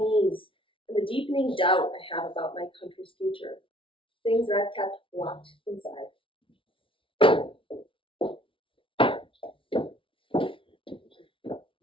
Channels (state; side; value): late; right; 0.25 ms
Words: and the deepening doubt I have about my country's future, things that I've kept locked inside.